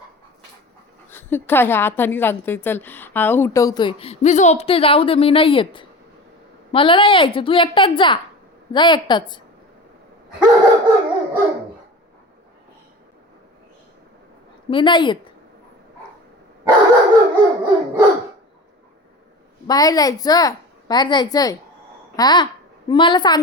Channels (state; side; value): normal; both; correlation 0.34